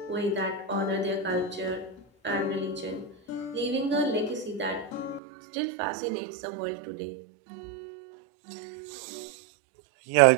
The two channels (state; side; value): drops out; left; at 5.2 s